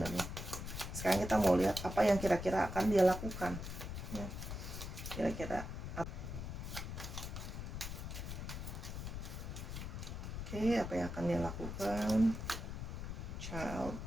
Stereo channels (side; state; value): left; noise; rumble, 6 dB below the sound